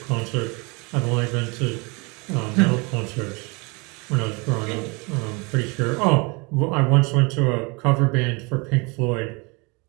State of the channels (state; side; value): quieter; left; 29.1 dB